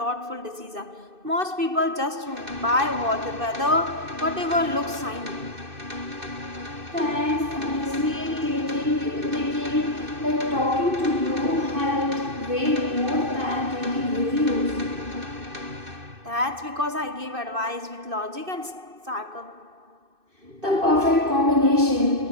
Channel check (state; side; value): late; left; 2.6 ms